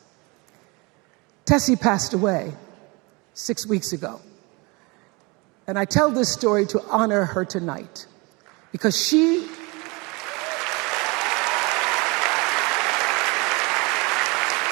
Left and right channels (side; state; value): left; quieter; 27.3 dB